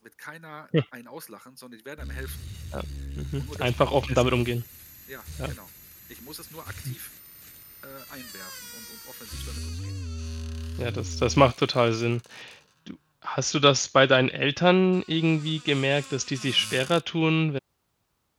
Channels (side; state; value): both; identical; correlation 1.00